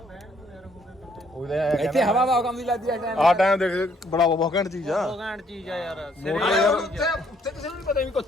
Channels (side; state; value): both; normal; correlation 0.67